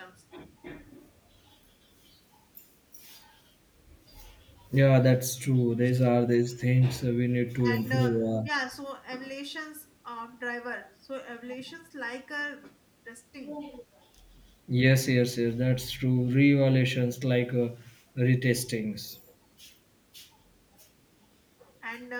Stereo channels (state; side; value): identical; both; correlation 1.00